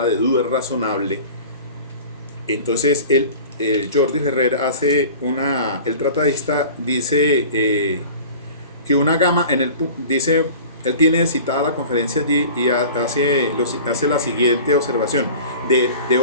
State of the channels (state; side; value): inverted; both; correlation -0.40